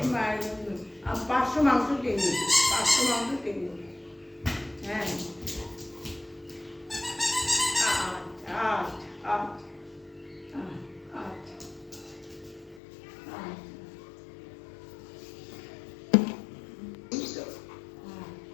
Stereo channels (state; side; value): drops out; right; at 12.8 s